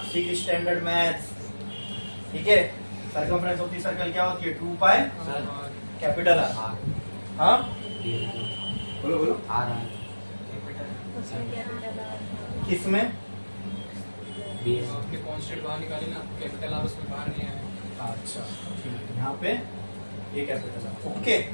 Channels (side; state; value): both; inverted; correlation -1.00